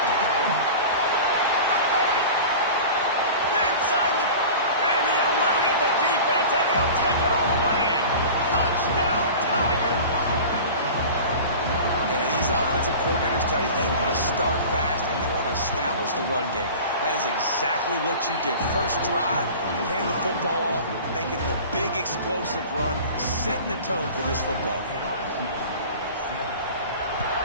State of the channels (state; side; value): inverted; both; correlation -0.37